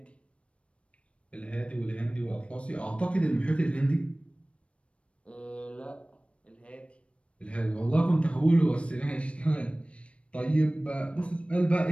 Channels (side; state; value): right; late; 0.061 ms